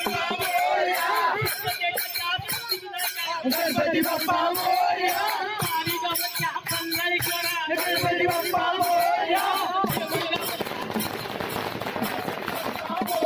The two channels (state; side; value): identical; both; correlation 1.00